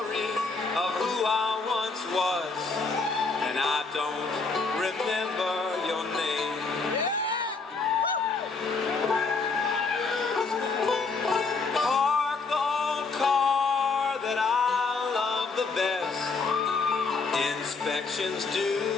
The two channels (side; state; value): right; quieter; 4.3 dB